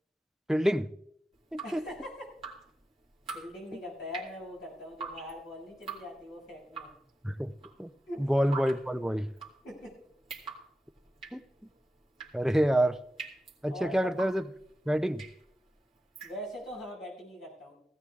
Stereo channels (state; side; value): normal; both; correlation 0.91